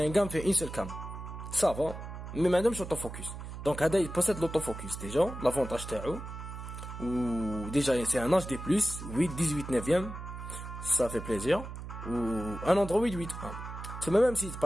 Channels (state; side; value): noise; right; hum, 9 dB below the sound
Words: gamme fait une seule cam. ça va, mais madame, je l'autofocus. Donc, Ada, il possède l'autofocus, déjà, l'avantage تاعو. Ou, déjà, c'est un HD+, 8, 18, 9e, ça fait plaisir. Ou, un Android 8.1. C'est même si,